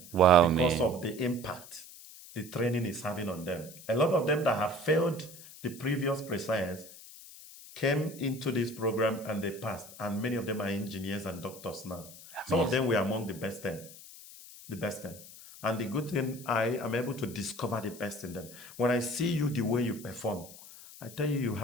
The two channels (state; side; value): noise; left; hiss, 17 dB below the sound